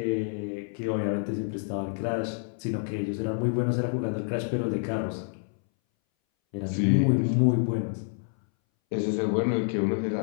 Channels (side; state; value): right; silent; 59 dB below the other